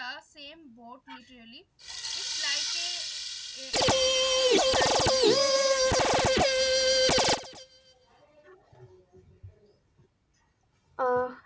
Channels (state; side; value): identical; both; correlation 1.00